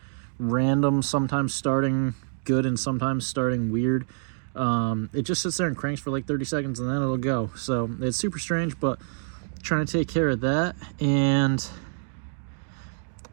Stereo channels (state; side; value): silent; left; digital silence